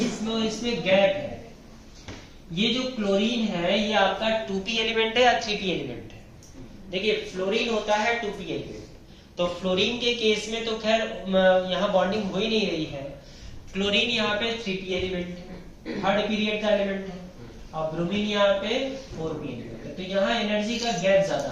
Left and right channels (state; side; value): identical; both; correlation 1.00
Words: इसमें गैप है। ये जो क्लोरीन है ये आपका 2p एलिमेंट है या 3p एलिमेंट है? देखिए फ्लोरीन होता है 2p एलिमेंट। तो फ्लोरीन के केस में तो खैर यहाँ बॉन्डिंग हो ही नहीं रही है। क्लोरीन यहाँ पे 3p एलिमेंट है, थर्ड पीरियड का एलिमेंट है, और ब्रोमीन यहाँ पे 4p एलिमेंट है। तो यहाँ एनर्जी का गैप ज्यादा